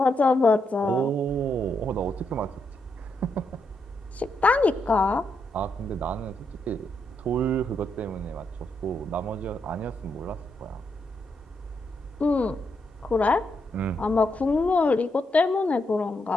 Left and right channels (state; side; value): normal; both; correlation 0.80